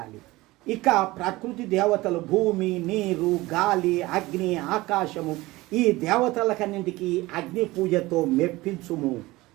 ఇక ప్రకృతి దేవతలు భూమి, నీరు, గాలి, అగ్ని, ఆకాశము ఈ దేవతలకన్నింటికి అగ్ని పూజతో మెప్పించుము,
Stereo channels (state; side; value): quieter; left; 19.8 dB